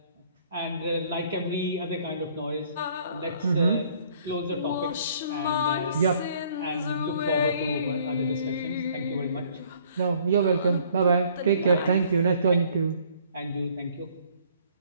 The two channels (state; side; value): inverted; both; correlation -0.60